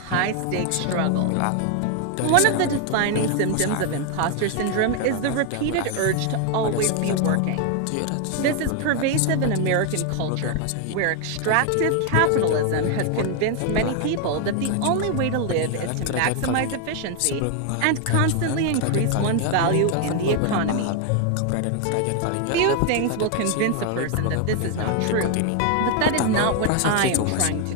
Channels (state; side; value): different; both; correlation 0.00